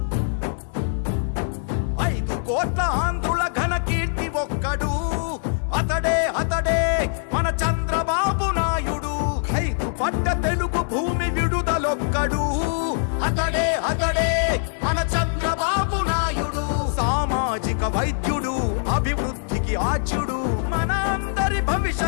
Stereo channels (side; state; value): right; silent; digital silence